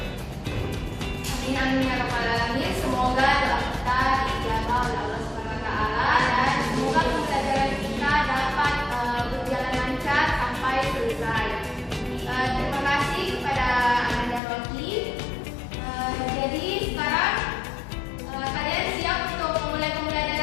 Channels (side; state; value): right; drops out; at 14.4 s